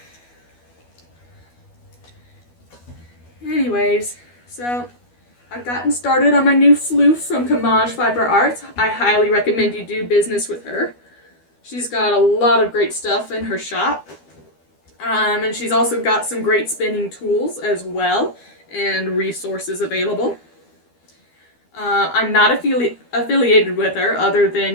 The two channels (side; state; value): right; late; 12 ms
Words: so I've gotten started on my new floof from Camaj Fiber Arts. I highly recommend you do business with her. She's got a lot of great stuff in her shop. And she's also got some great spinning tools as well, and resources available. I'm not affiliated with her, other than,